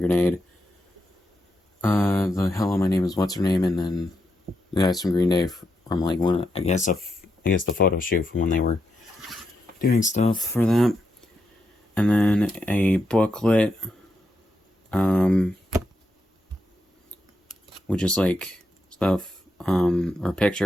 The hello, my name is What's Her Name, and then the guys from Green Day from like I guess the photo shoot from when they were doing stuff for that. And then a booklet, which is like stuff, or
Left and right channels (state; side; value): normal; both; correlation 0.83